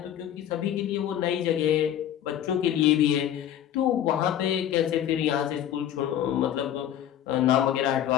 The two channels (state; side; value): quieter; right; 10.8 dB